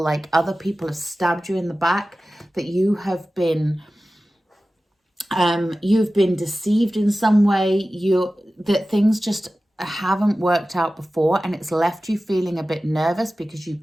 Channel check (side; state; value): both; normal; correlation 0.95